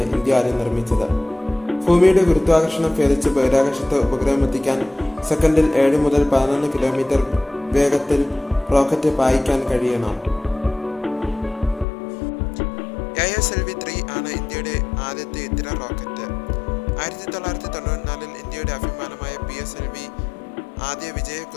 ഇന്ത്യ ആദ്യം നിർമ്മിച്ചത്. ഭൂമിയുടെ ഗുരുത്വാകർഷണം ഭേദിച്ച് ബഹിരാകാശത്ത് ഉപഗ്രഹം എത്തിക്കാൻ സെക്കൻഡിൽ 7 മുതൽ 11 കിലോമീറ്റർ വേഗത്തിൽ റോക്കറ്റ് പായിക്കാൻ കഴിയണം. ASLV-3 ആണ് ഇന്ത്യയുടെ ആദ്യത്തെ ഇത്തര റോക്കറ്റ്. 1994 ഇന്ത്യയുടെ അഭിമാനമായ PSLV ആദ്യ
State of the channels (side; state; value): right; drops out; at 11.9 s